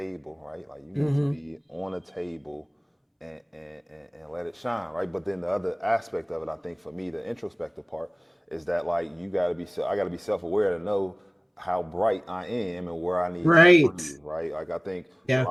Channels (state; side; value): identical; both; correlation 1.00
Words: right? Like you need to hmm. be on a table and let it shine, right? But then the other aspect of it, I think for me, the introspective part is that like I got to be self-aware to know how bright I am and where I need to Right. breathe, right? Like I think a Yeah.